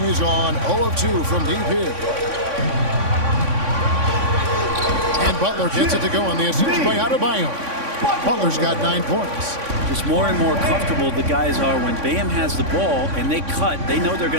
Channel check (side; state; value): left; late; 3.6 ms